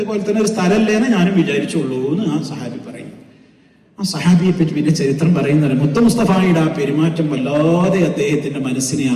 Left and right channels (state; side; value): identical; both; correlation 1.00